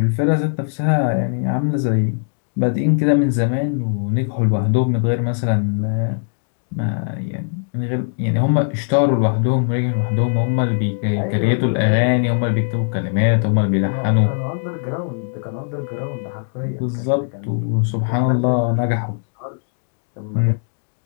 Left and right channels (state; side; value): silent; right; digital silence